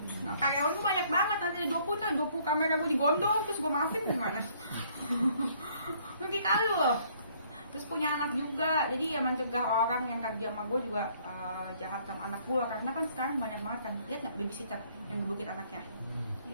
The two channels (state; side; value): inverted; both; correlation -0.63